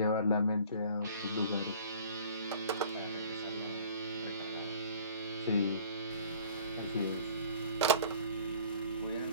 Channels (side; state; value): both; inverted; correlation -0.49